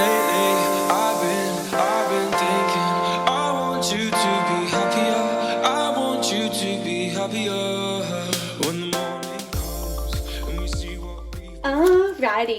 been thinking, I want you to be happier. I want you to be happier when the morning comes and we see what we.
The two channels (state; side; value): identical; both; correlation 1.00